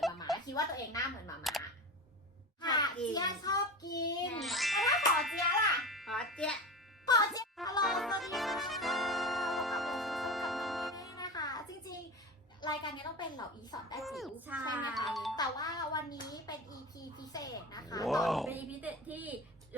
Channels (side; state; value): both; normal; correlation 0.28